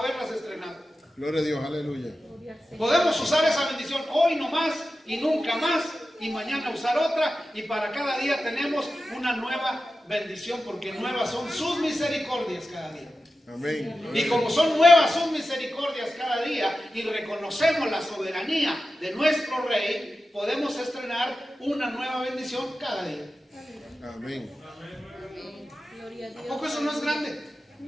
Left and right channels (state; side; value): normal; both; correlation 0.93